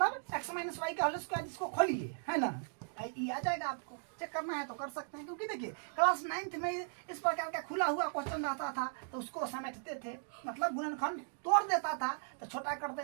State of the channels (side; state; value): left; silent; digital silence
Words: x माइनस वाई का होल स्क्वायर इसको खोलिए, है ना, ये आ जाएगा। आपको चेक करना है तो कर सकते हैं, क्योंकि देखिए क्लास 9th में इस प्रकार का खुला हुआ क्वेश्चन रहता था तो उसको समेटते थे, मतलब गुणनखंड तोड़ देता था तो छोटा कर